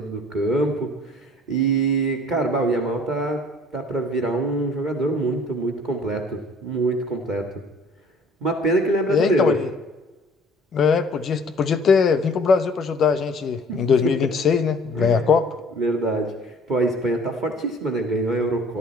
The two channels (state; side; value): normal; both; correlation 0.53